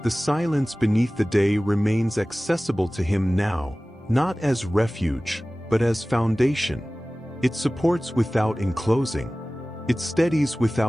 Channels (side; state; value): both; normal; correlation 0.98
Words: The silence beneath the day remains accessible to him now, not as refuge, but as foundation. It supports without enclosing. It steadies